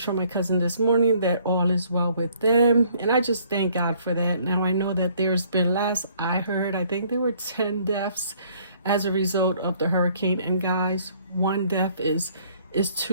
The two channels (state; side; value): inverted; both; correlation -0.62